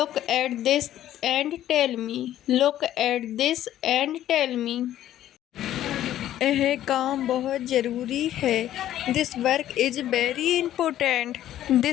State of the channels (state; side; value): quieter; right; 12.5 dB